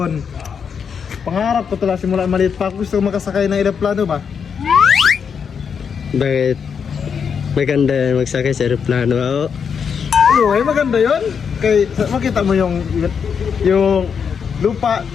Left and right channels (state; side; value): quieter; right; 6.7 dB